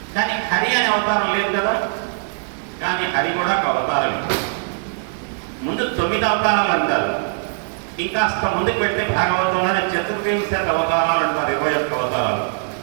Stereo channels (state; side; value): silent; left; 65 dB below the other